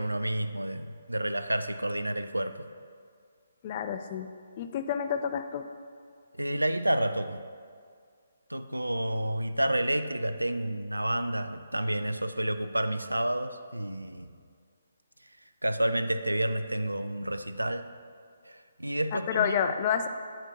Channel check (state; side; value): inverted; both; correlation -0.87